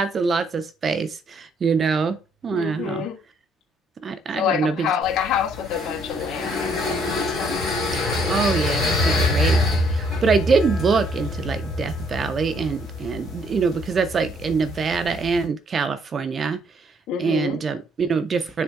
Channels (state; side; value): normal; both; correlation 0.67